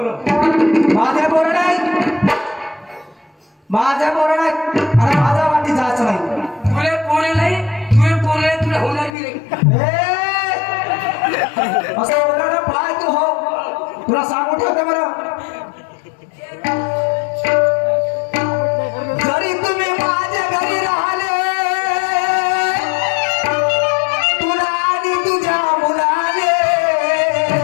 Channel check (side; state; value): right; drops out; at 9.1 s